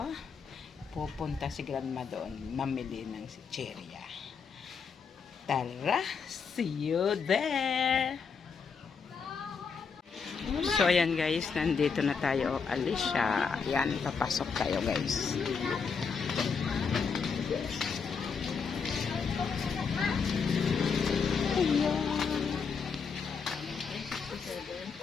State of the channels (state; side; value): quieter; right; 5.7 dB